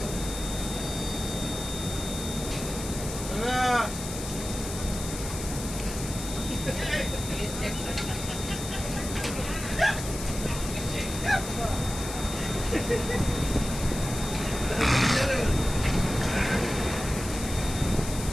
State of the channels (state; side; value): noise; left; hiss, 8 dB below the sound